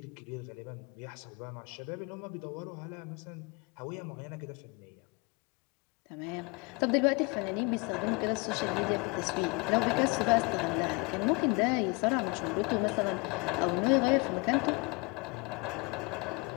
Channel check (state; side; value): quieter; right; 29.0 dB